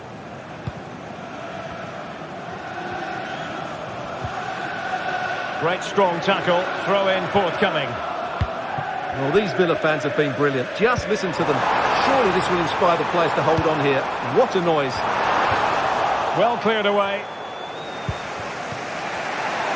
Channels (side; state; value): both; identical; correlation 1.00